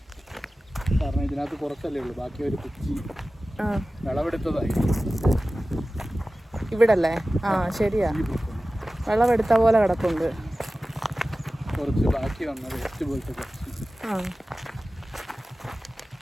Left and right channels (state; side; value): normal; both; correlation 0.96